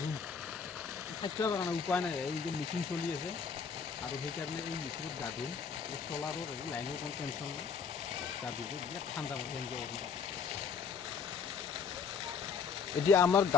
থাকিব পৰা নাই, উপায় নাই, এই যে মেচিন চলি আছে আৰু সেইকাৰণে এই মেচিনত গা ধুম, এই চলাৰৰ লাইনৰ কোনো টেনশ্যন নাই, গা ধুব বিৰাট ঠাণ্ডা পৰে এনজয় কৰিম। এতিয়া আমাৰ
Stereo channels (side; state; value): right; quieter; 6.1 dB